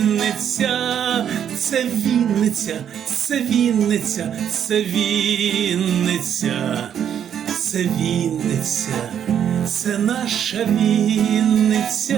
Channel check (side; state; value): left; quieter; 9.0 dB